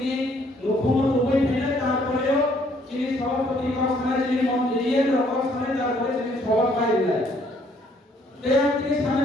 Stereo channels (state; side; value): normal; both; correlation 0.65